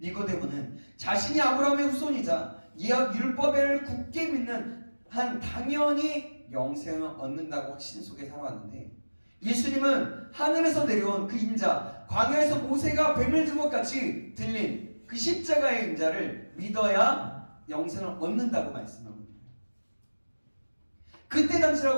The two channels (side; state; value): both; inverted; correlation -1.00